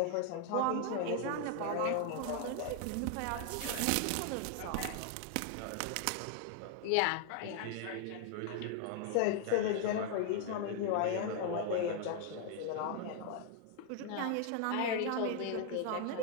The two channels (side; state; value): both; different; correlation 0.00